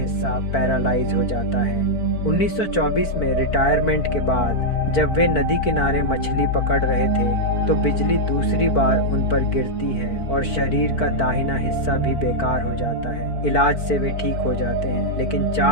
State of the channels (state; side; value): late; right; 4.5 ms